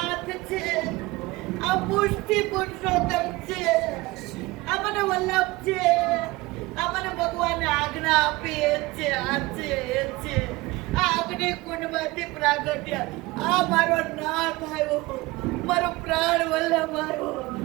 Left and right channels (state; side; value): quieter; left; 21.4 dB